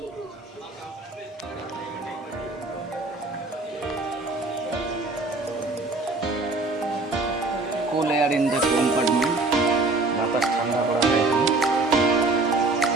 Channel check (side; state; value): left; quieter; 3.3 dB